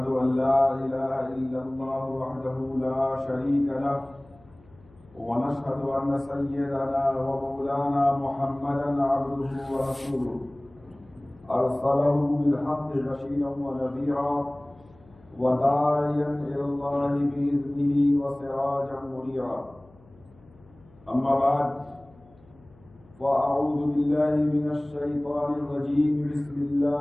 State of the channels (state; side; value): noise; left; hum, 27 dB below the sound